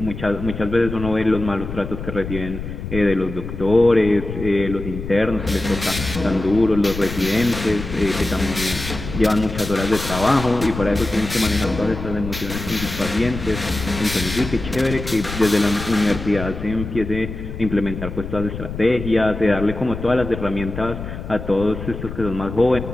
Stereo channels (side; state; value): left; noise; rumble, 8 dB below the sound